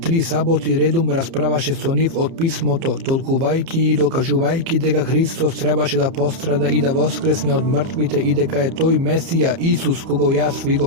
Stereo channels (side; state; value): left; late; 30 ms